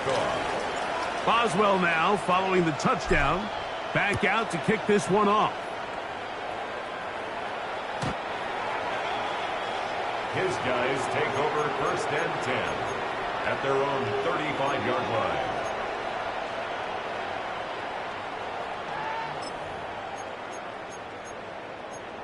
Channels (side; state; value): both; identical; correlation 1.00